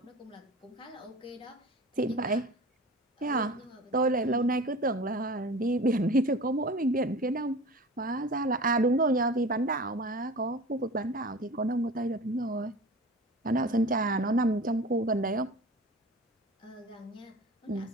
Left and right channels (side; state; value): both; normal; correlation 0.37